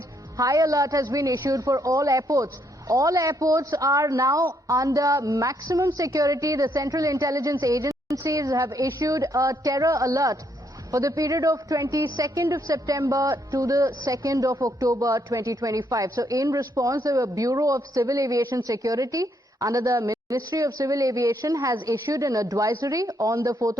alert has been issued for all airports. All airports are now under maximum security. The Central Intelligence Agencies have issued a terror alert for the period of 22nd of September to the 2nd of October 2025. So in response, the Bureau of Civil Aviation Security under the Ministry of Civil Aviation has issued an advisory on the 4th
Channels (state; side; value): normal; both; correlation 0.73